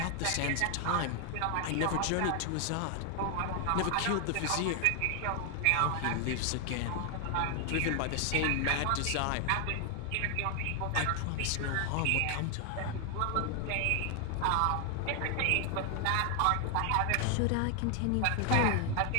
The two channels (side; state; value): both; different; correlation 0.00